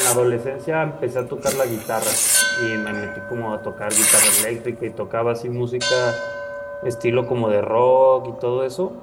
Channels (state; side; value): identical; both; correlation 1.00